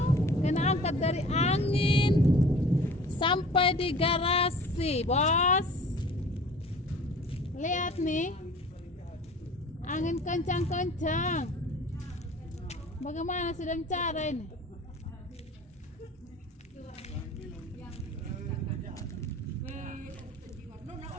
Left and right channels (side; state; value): both; normal; correlation 0.45